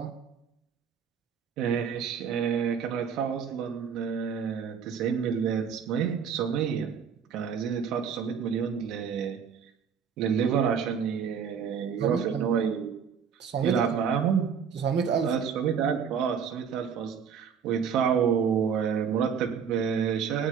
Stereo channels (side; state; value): left; quieter; 7.1 dB